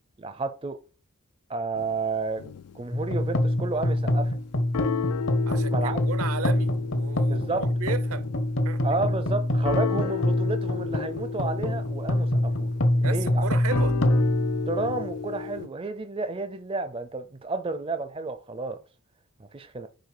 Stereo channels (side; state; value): both; normal; correlation 0.64